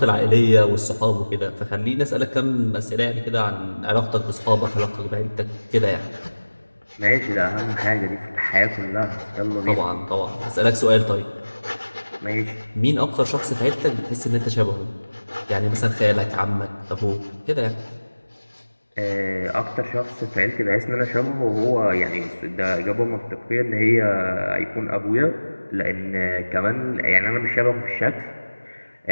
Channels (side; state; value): both; inverted; correlation -1.00